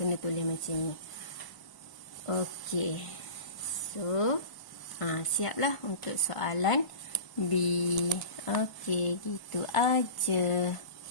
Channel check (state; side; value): late; right; 1.0 ms